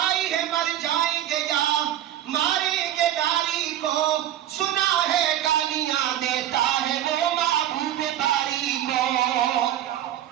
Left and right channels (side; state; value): left; quieter; 11.8 dB